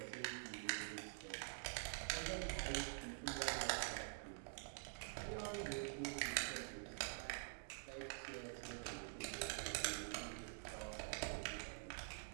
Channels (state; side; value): silent; left; digital silence